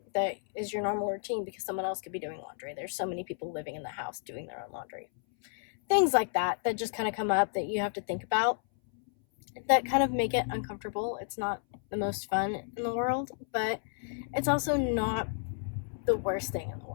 that is your normal routine because someone else could be doing laundry. There's so many people living in the house doing their own laundry. Things like that just kind of come up that you have to think about, that kind of make it uncomfortable. It's not the most fun in the world, but it's also not the worst thing in the world.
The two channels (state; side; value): silent; right; 57 dB below the other